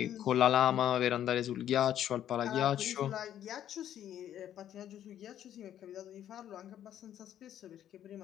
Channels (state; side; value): quieter; right; 10.9 dB